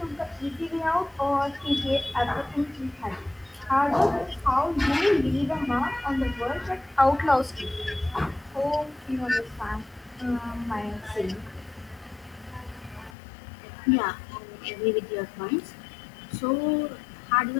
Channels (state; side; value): drops out; right; at 13.2 s